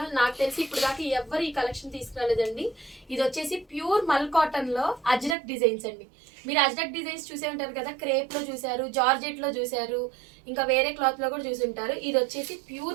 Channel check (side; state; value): left; drops out; at 5.4 s